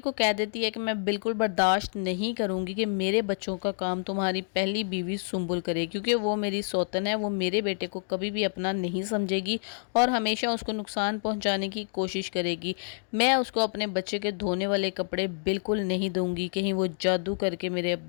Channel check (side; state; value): right; silent; digital silence